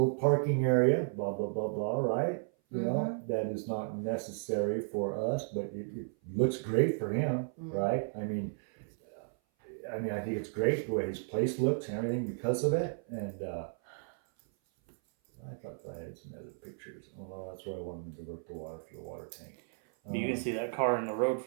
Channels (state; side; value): silent; left; 55 dB below the other